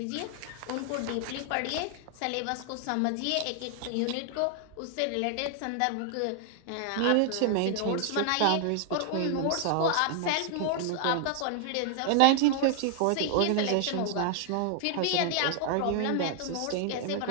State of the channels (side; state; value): both; different; correlation 0.00